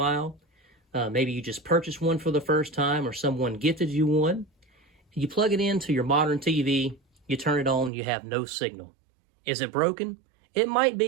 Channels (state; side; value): drops out; left; at 7.9 s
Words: Maybe you just purchased one for the first time or someone gifted you one. You plug it into your modern TV, you turn it on, you have no signal. Is it broken? It might